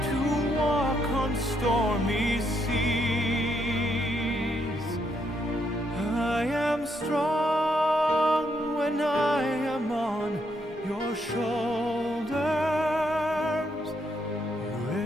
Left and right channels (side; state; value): both; normal; correlation 0.76